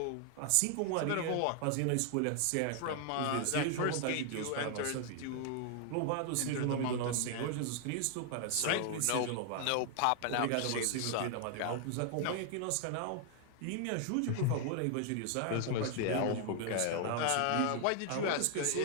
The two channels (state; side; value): different; both; correlation 0.00